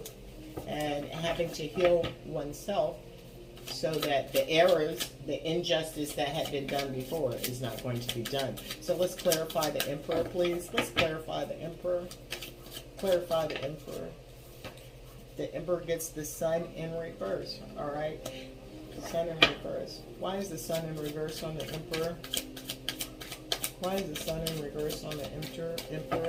and having to heal oneself so that the errors, the injustice that had been done before is not going to be done. So let's clarify the Emperor, please. Let's clarify the Emperor. Clarify the Emperor. The Emperor gets the Sun in reverse, all right? The Sun in reverse. Why is the Sun in reverse on the Emperor? Why is the Sun in reverse on the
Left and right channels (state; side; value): identical; both; correlation 1.00